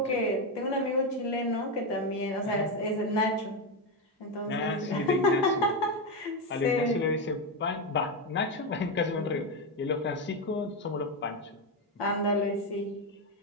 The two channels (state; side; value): normal; both; correlation 0.09